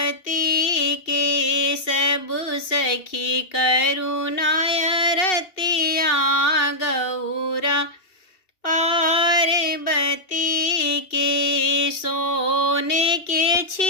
के। सबु सखी करुणाय रतिया गौरा पार्वती के। सोने के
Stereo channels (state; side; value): late; right; 2.7 ms